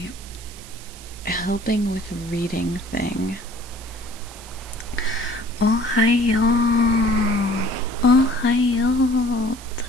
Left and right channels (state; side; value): noise; right; hiss, 17 dB below the sound